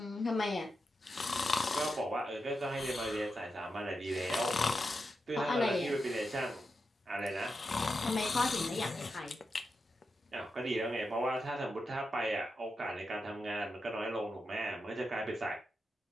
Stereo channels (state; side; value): normal; both; correlation 0.88